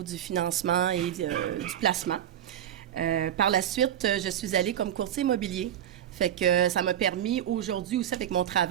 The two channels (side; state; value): left; quieter; 10.6 dB